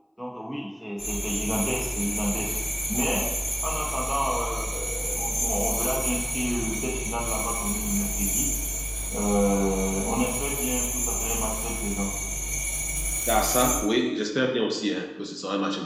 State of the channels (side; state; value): both; identical; correlation 1.00